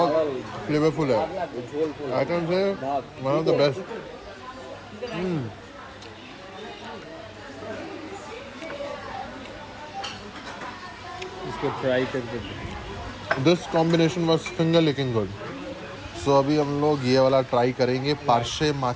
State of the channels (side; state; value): both; identical; correlation 1.00